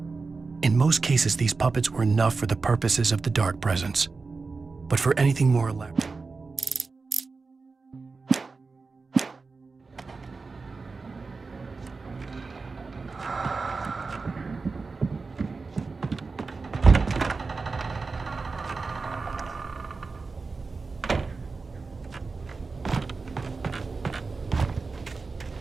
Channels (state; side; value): quieter; left; 4.2 dB